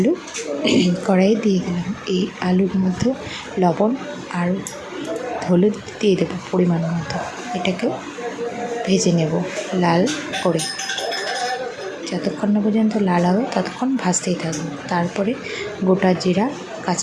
কড়াইয়ে দিয়ে দিলাম। এই আলুর মধ্যে লবণ আর হলুদ দিয়ে দেবো পরিমাণ মতো। এটাকেও ভেজে নেব লাল করে। যতক্ষণ না পর্যন্ত লাল হবে ততক্ষণ ভাজতেই থাকবো। তারপরে গোটা জিরা,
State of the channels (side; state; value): both; identical; correlation 1.00